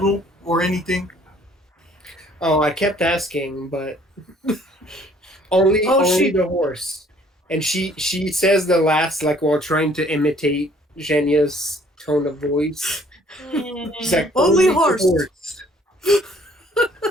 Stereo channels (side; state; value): both; normal; correlation 0.59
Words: or anything? Oh, I kept asking, but only the horse. And she says the last like while trying to imitate Zhenya's tone of voice. She's like, Only the horse."